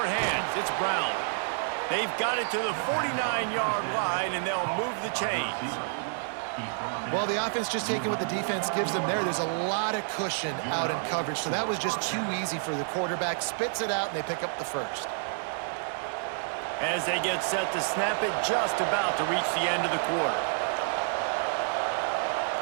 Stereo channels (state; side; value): silent; left; digital silence